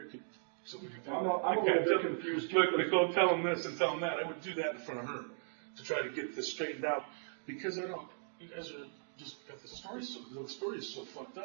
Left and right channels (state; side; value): silent; left; digital silence